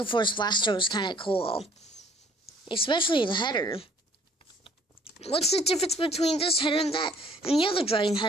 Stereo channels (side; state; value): both; normal; correlation 0.58